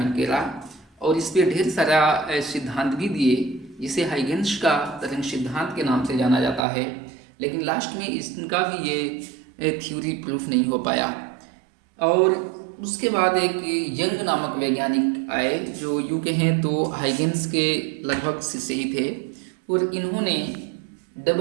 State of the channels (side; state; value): left; drops out; at 6.7 s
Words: किया और इस पर ढेर सारा सिद्धांत भी दिए, जिसे हाइगेंस का तरंग सिद्धांत के नाम से जाना जाता है। लेकिन लास्ट में इनका भी ये थ्योरी प्रूफ नहीं हो पाया। और उसके बाद एक यंग नामक वैज्ञानिक आए जो यूँ कहें तो हाइगेंस के लगभग शिष्य ही थे, और इन्होंने